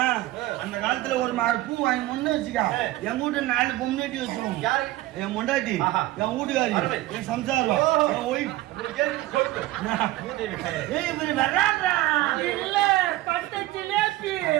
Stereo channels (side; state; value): left; quieter; 17.0 dB